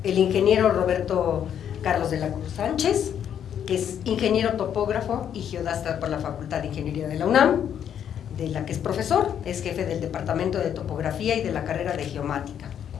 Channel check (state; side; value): quieter; right; 9.1 dB